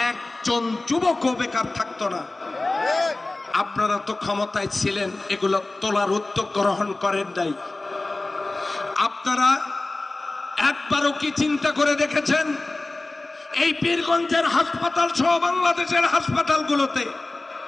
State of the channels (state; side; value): quieter; right; 3.0 dB